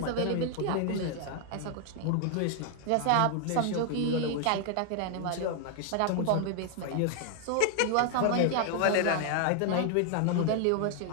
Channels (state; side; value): different; both; correlation 0.00